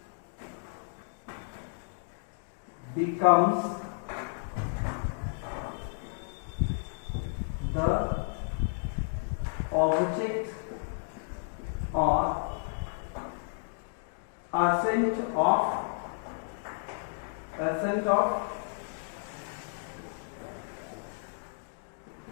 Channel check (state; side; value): silent; right; digital silence